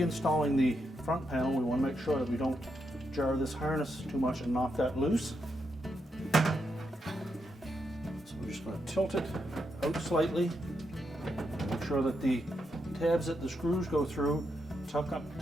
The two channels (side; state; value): both; normal; correlation 0.82